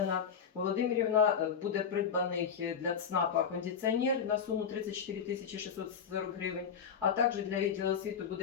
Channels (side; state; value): right; quieter; 6.9 dB